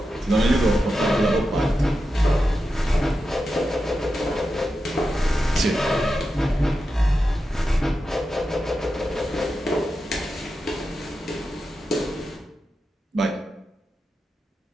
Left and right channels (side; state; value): both; normal; correlation 0.90